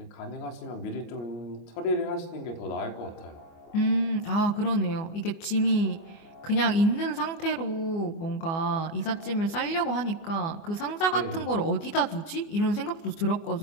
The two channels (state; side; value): late; right; 24 ms